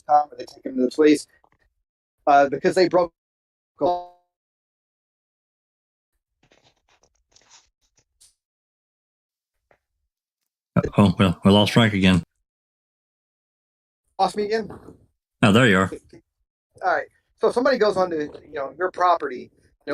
come, or they take them to the police because they broke. Oh, well, we lost Frank again. Lost me again? Oh, there you are. All right. So if somebody goes onto your property,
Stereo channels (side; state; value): both; identical; correlation 1.00